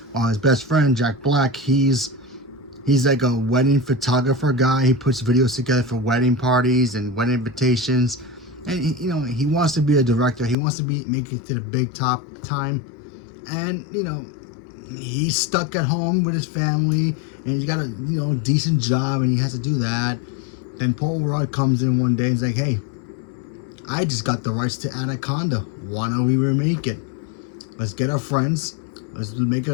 While his best friend Jack Black, he's like a wedding photographer guy. He puts videos together for wedding parties and wedding invitations. And he wants to be a director. He wants to make it to the big top time. And he's stuck at home with his family, and he's got a decent job, and he has to do that. Then Paul Rudd comes in one day and he's like, "Hey, I just got the rights to Anaconda. Why don't we remake it? Let's get our friends, let's make it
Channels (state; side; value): drops out; right; at 10.6 s